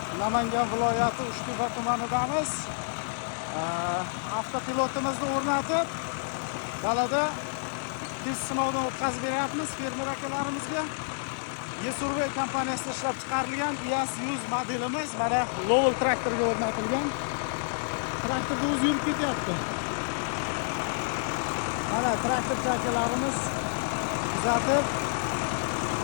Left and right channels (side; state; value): right; silent; digital silence